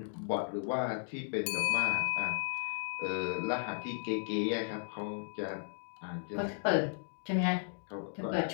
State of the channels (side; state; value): right; silent; digital silence